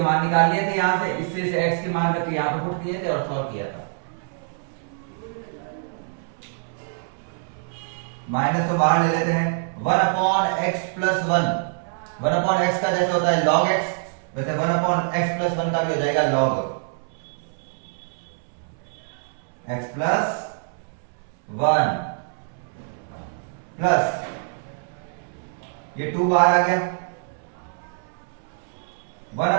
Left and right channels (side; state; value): left; silent; 62 dB below the other